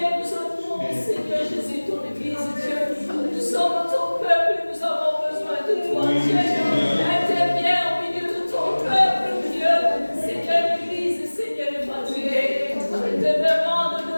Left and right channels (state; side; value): inverted; both; correlation -1.00